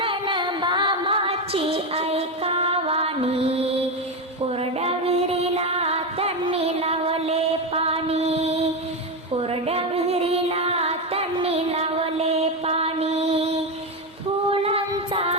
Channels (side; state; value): both; normal; correlation 0.12